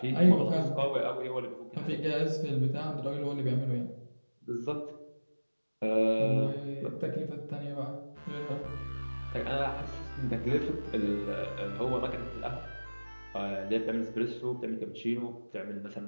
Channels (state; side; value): inverted; both; correlation -1.00